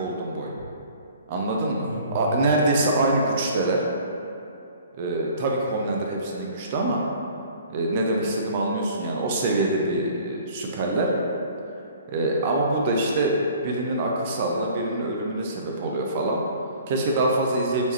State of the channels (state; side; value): inverted; both; correlation -0.50